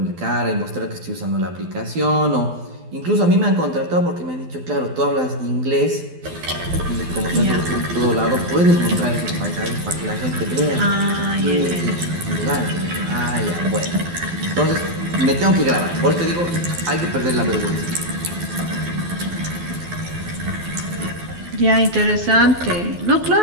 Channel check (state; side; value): late; left; 12 ms